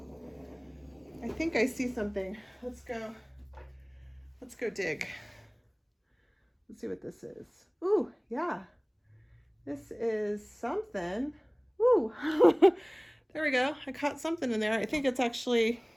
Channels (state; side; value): identical; both; correlation 1.00